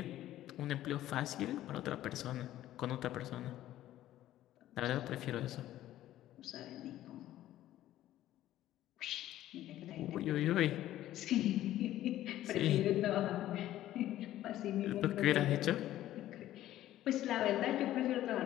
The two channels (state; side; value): quieter; right; 13.6 dB